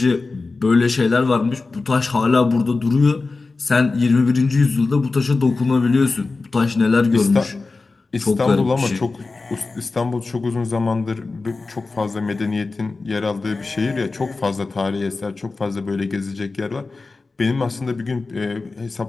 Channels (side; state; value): right; quieter; 3.8 dB